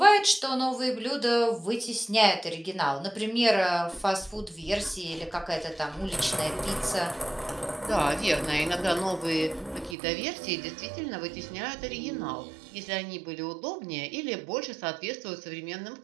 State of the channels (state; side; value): drops out; left; at 10.0 s